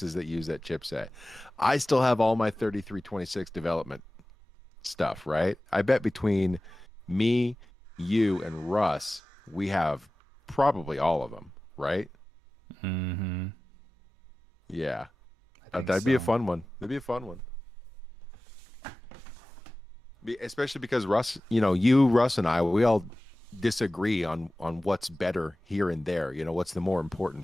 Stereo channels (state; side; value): normal; both; correlation 0.97